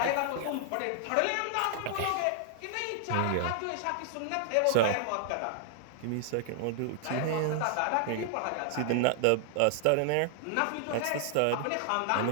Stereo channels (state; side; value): different; both; correlation -0.01